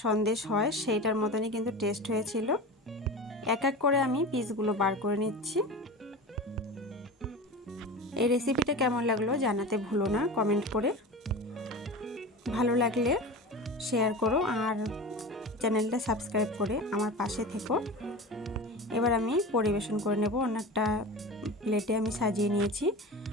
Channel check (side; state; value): both; normal; correlation 0.31